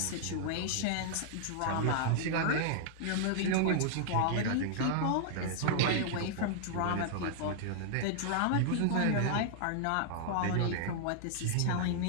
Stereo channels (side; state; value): both; different; correlation -0.01